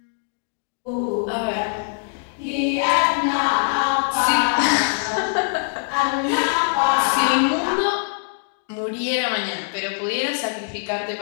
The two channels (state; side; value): silent; right; digital silence